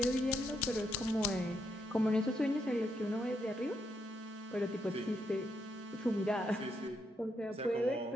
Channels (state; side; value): normal; both; correlation 0.79